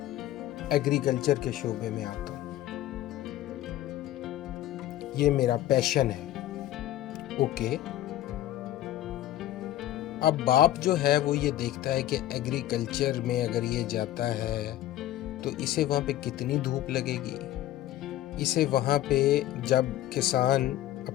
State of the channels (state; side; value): quieter; right; 13.7 dB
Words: एग्रीकल्चर के शोबे में आता हूँ, ये मेरा पैशन है। ओके, अब बाप जो है वो ये देखता है कि एग्रीकल्चर में अगर ये जाता है तो इसे वहाँ पे कितनी धूप लगेगी, इसे वहाँ पे जब किसान